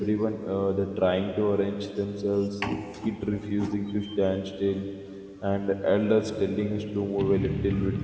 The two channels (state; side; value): identical; both; correlation 1.00